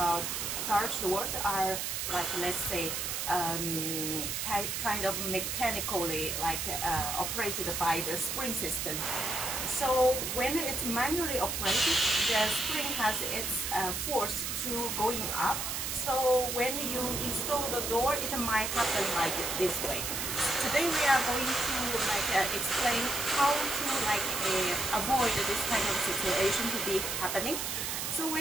garage doors are like, let's say, kind of mechanically like operated by the spring system. So when it's manually operated, the spring has its force to going up. So when you install the door, it might happen like this way. Today we are going to explain how to avoid this kind of situation to be happening. So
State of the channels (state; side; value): noise; right; hiss, 2 dB below the sound